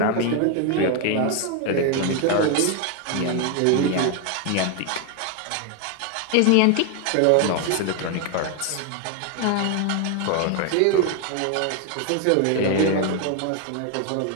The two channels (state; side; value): different; both; correlation 0.01